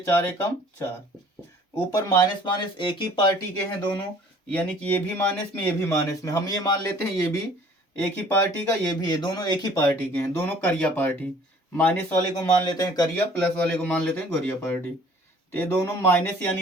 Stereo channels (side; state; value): both; normal; correlation 0.54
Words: एकम 4। ऊपर माइनस माइनस एक ही पार्टी के हैं दोनों, यानी कि ये भी माइनस में ये भी माइनस में। हम ये मान लेते हैं ये भी एक ही पार्टी का, ये भी है, दोनों एक ही पार्टी के हैं, दोनों करिया पार्टी। माइनस वाले को मान लेते हैं करिया, प्लस वाले को मान लेते हैं गोरिया पार्टी। तो ये दोनों माइनस